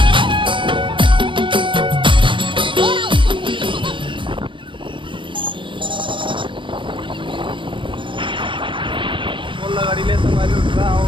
गाड़ी ले संगवारी उठा आओ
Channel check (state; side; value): late; left; 0.24 ms